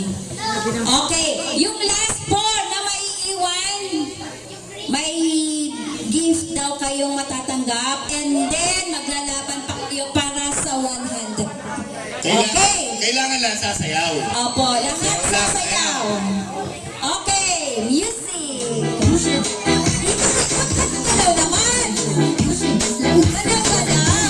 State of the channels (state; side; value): identical; both; correlation 1.00